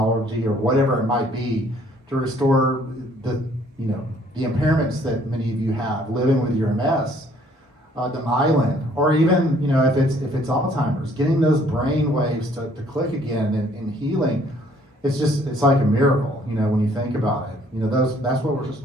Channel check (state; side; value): normal; both; correlation 0.61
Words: or whatever it might be to restore the impairments that many of you have living with your MS, the myelin, or even if it's Alzheimer's, getting those brain waves to click again and healing. It's like a miracle, when you think about it. That's what we're just